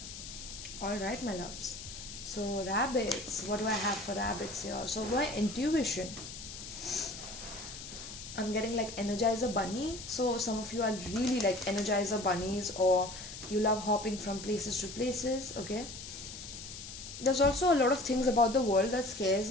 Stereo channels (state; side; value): noise; left; hiss, 11 dB below the sound